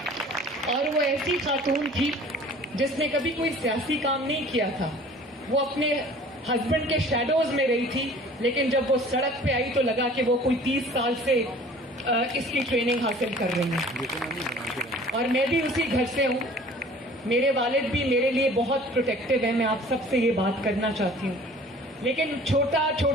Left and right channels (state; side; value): normal; both; correlation 0.48